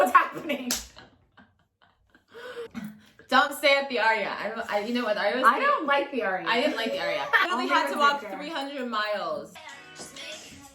happening? Don't stay at the Aria. You know what? I don't like the Aria. I didn't like the Aria. I Only literally had to with walk Victor. 300 miles.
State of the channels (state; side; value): identical; both; correlation 1.00